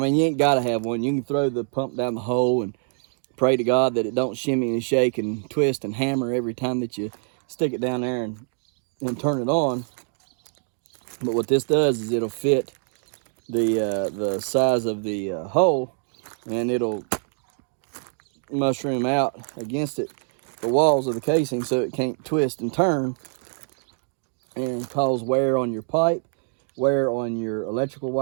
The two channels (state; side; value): silent; left; 57 dB below the other